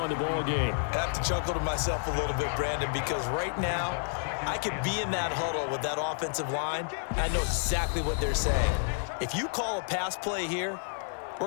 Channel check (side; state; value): right; silent; digital silence